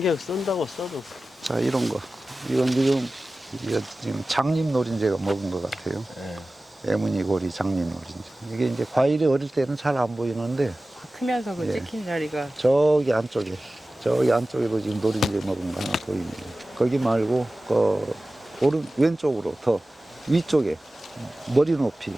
쓴다고 써도. 자, 이런 거. 이건 지금 장립 노린재가 먹은 것 같아요. 네. 애무늬고리 장립 노린재. 이게 이제 과일이 어릴 때는 잘 안 보이는데 크면서 그 예. 찍힌 자리가 저기 안쪽에도 지금 노린재 먹은 거 하나 보입니다. 거기 말고 왼쪽으로 더 위쪽에 머리 높이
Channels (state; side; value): normal; both; correlation 0.96